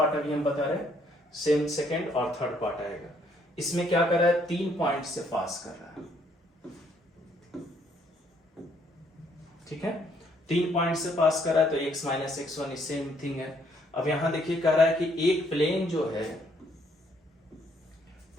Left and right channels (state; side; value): normal; both; correlation 0.68